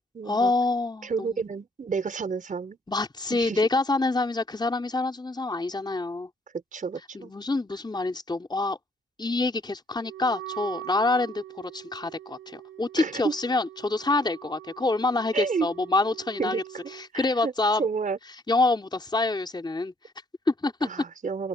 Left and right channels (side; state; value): both; normal; correlation 0.65